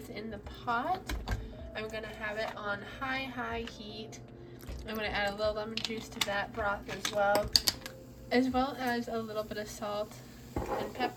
in the pot, I'm gonna have it on high heat. I'm gonna add a little lemon juice to that broth as well as a little bit of salt and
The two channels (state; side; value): identical; both; correlation 1.00